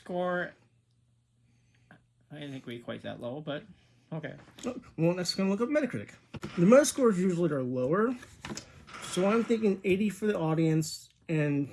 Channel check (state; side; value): identical; both; correlation 1.00